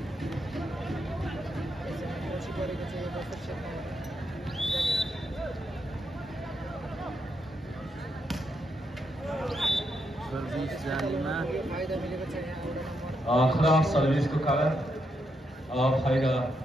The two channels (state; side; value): normal; both; correlation 0.81